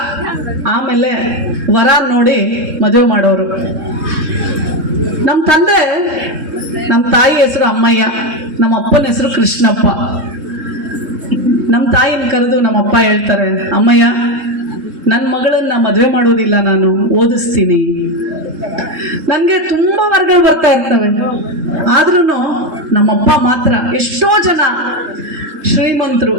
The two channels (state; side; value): late; left; 3.7 ms